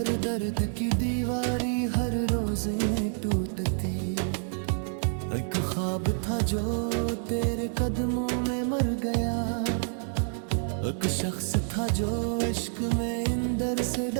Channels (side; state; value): left; silent; digital silence